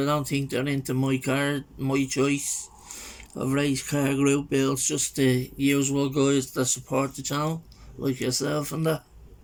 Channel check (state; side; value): identical; both; correlation 1.00